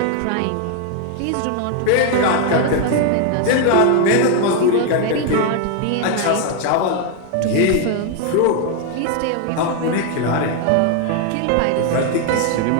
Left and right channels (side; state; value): both; different; correlation 0.00